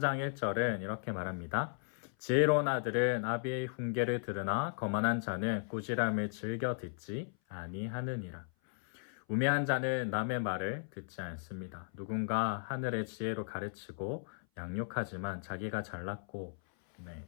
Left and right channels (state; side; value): silent; right; 54 dB below the other